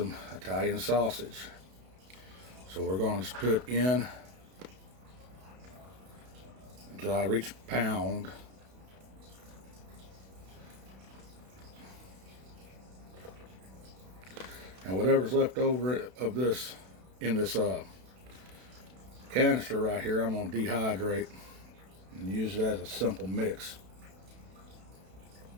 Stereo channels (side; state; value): left; late; 32 ms